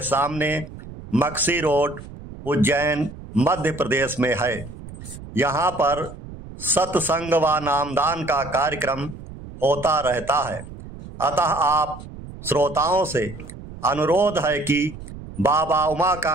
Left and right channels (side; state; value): right; noise; rumble, 14 dB below the sound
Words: सामने मक्सी रोड, उज्जैन, मध्य प्रदेश में है। यहाँ पर सत्संग व नामदान का कार्यक्रम होता रहता है, अतः आप श्रोताओं से अनुरोध है कि बाबा